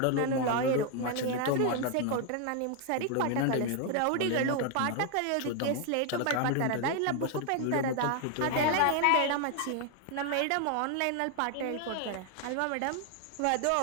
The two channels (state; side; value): different; both; correlation 0.01